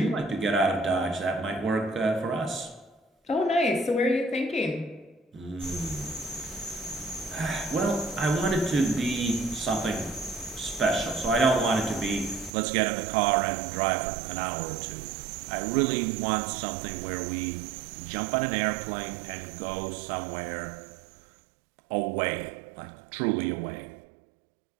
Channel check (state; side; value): drops out; left; at 12.5 s